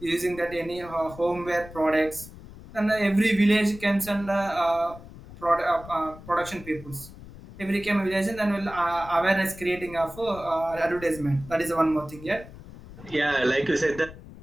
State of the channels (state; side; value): noise; left; rumble, 17 dB below the sound